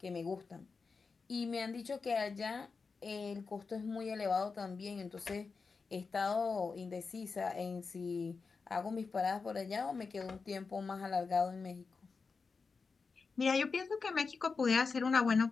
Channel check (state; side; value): quieter; right; 4.7 dB